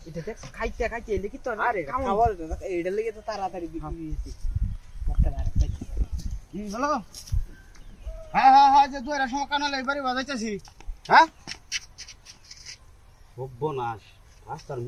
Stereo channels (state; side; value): identical; both; correlation 1.00